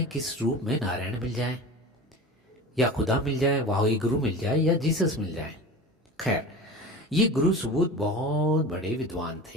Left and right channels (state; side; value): normal; both; correlation 0.33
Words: किस रूप में नारायण मिल जाए या खुदा मिल जाए, वाही गुरु मिल जाए या जीसस मिल जाए। खैर, ये गुरु सुबोध बहुत बड़े विद्वान